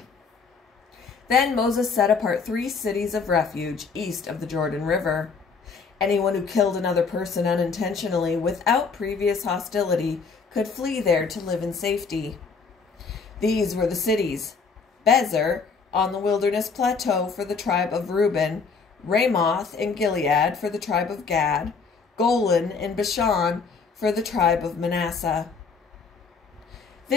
Then Moses set apart 3 cities of refuge east of the Jordan River. Anyone who killed another person unintentionally without previous hostility could flee there to live in safety. These were the cities: Bezer on the wilderness plateau for the tribe of Reuben, Ramoth in Gilead for the tribe of Gad, Golan in Bashan for the tribe of Manasseh.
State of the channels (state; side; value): quieter; right; 5.0 dB